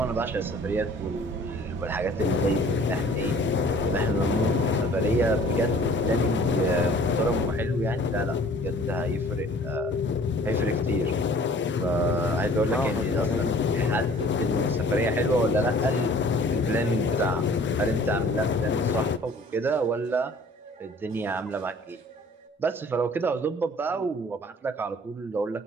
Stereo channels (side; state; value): both; normal; correlation 0.51